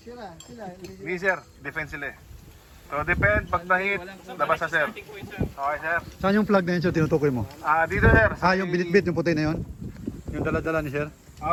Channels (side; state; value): both; identical; correlation 1.00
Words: Hindi sir, defense sila eh. So depend, pag na-hit, labas na sir. Okay sir? Saan yung flag na yun, sir, tinutukoy mo? Dito sir. Yung binitbit, yung puti na yun? Yung dala-dala ni sir?